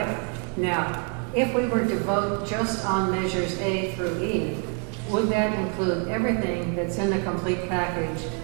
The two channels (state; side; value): quieter; left; 38.9 dB